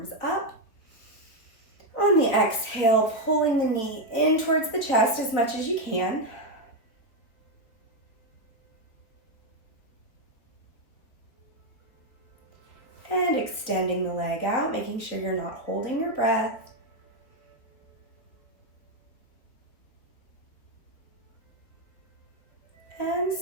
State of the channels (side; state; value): right; late; 4.1 ms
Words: up. On the exhale, pulling the knee in towards the chest as much as you can. And extending the leg out, making sure you're not holding your breath. And